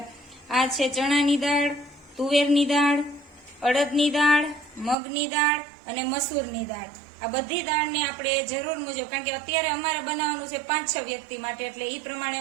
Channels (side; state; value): left; drops out; at 5.0 s